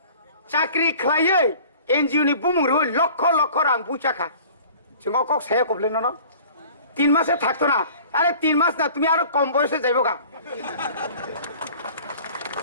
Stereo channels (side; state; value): both; inverted; correlation -0.46